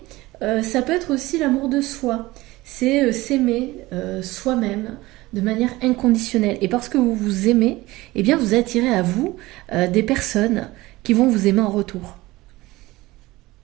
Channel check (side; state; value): left; quieter; 19.4 dB